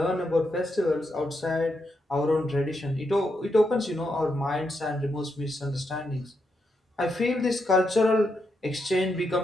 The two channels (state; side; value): normal; both; correlation 0.82